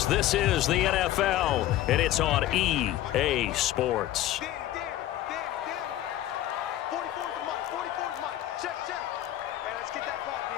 This is the NFL, and it's on EA Sports. 44's mine. 44's mine. Check. Hey, let's get that ball,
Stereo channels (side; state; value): right; quieter; 13.8 dB